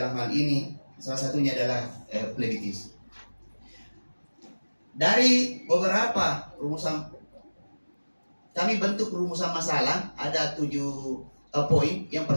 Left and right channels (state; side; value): inverted; both; correlation -1.00